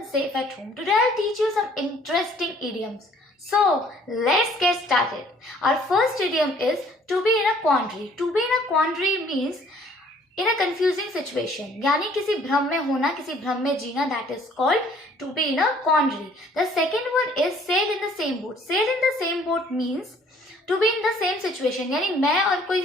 safe at home. Today I'll teach you some interesting idioms. So let's get started. Our first idiom is to be in a quandary. To be in a quandary means in a confusing situation. यानी किसी भ्रम में होना, किसी भ्रम में जीना. That is called to be in a quandary. The second one is sail in the same boat. Sail in the same boat means to be in the same situation. यानी मैं और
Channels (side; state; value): both; normal; correlation 0.58